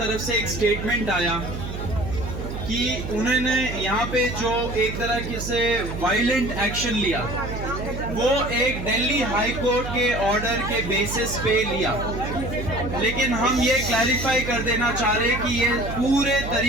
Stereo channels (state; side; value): noise; right; hum, 7 dB below the sound